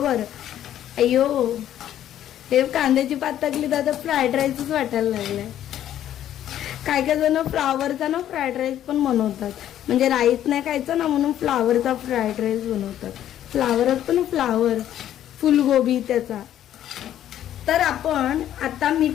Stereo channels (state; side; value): quieter; right; 11.4 dB